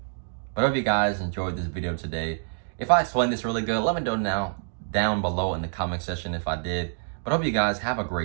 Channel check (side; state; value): left; silent; digital silence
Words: But I hope you guys enjoyed this video today. If I explained this really good, let me know down below in the comment section if I did. But I hope you guys have a